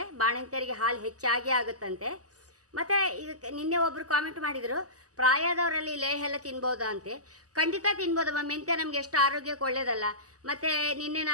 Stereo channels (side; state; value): left; late; 0.67 ms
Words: ಬಾಣಂತಿಯರಿಗೆ ಹಾಲು ಹೆಚ್ಚಾಗಿ ಆಗುತ್ತಂತೆ. ಮತ್ತು ಈಗ ನಿನ್ನೆ ಒಬ್ಬರು ಕಾಮೆಂಟ್ ಮಾಡಿದರು, ಪ್ರಾಯದವರಲ್ಲಿ ಲೇಹ ಎಲ್ಲ ತಿನ್ಬೋದಾ ಅಂತೆ. ಖಂಡಿತ ತಿನ್ಬೋದಮ್ಮ. ಮೆಂತ್ಯ ನಮಗೆ ಎಷ್ಟು ಆರೋಗ್ಯಕ್ಕೆ ಒಳ್ಳೆಯದಲ್ಲ. ಮತ್ತು ನಿನ್ನೆ